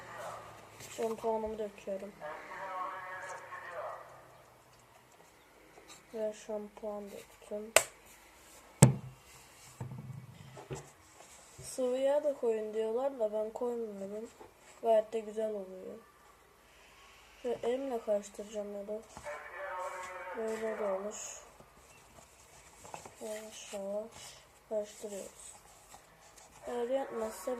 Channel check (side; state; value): both; identical; correlation 1.00